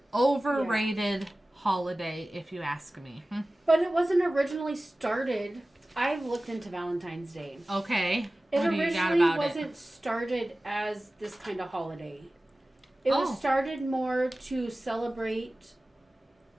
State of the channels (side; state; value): both; normal; correlation 0.97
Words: overrated holiday, if you ask me. But it wasn't originally started. I've looked into Valentine's Day. Okay. It originally wasn't started as this kind of holiday. It was started more to celebrate